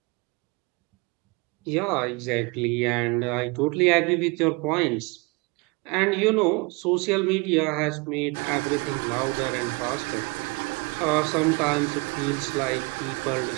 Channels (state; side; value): quieter; left; 27.9 dB